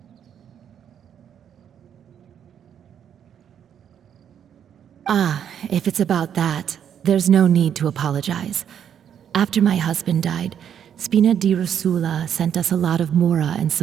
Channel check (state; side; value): quieter; left; 8.9 dB